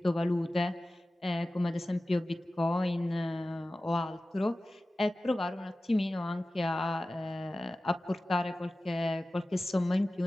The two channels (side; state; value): both; normal; correlation 0.96